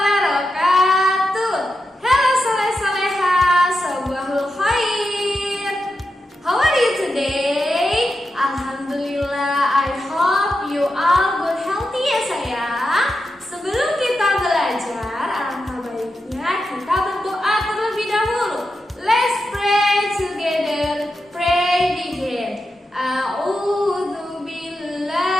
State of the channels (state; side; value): normal; both; correlation 0.88